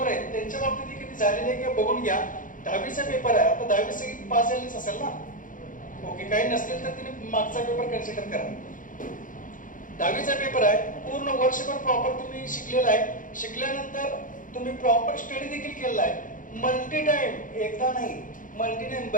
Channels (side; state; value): right; late; 0.38 ms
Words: आहेत त्यांच्या बाबतीत किती झालेली आहे किंवा बघून घ्या. 10वीचा पेपर आहे, आता 10वी सगळी पास झालीच असेल ना? ओके. काही नसतील तर तिने मागचा पेपर कन्सिडर करा. 10वीचा पेपर आहे, पूर्ण वर्षभर प्रॉपर तुम्ही शिकलेला आहे. शिकल्यानंतर तुम्ही प्रॉपर स्टडी देखील केलेला आहे. मल्टी टाइम, एकदा नाही मल्टी टाइम